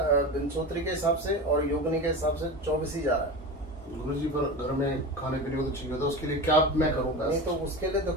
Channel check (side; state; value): both; normal; correlation 0.27